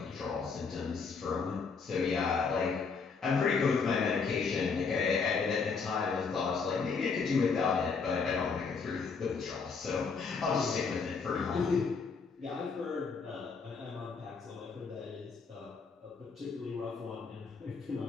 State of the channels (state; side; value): quieter; right; 5.1 dB